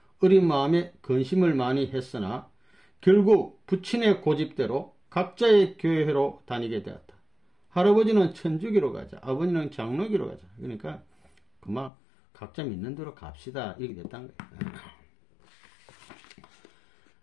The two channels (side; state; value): right; drops out; at 11.9 s